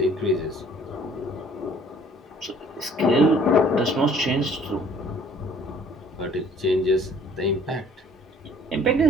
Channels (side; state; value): both; normal; correlation 0.56